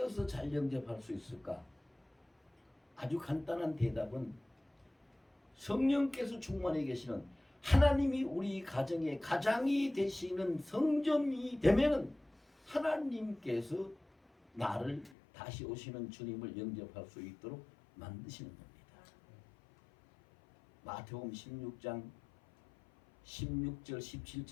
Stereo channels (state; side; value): drops out; right; at 15.2 s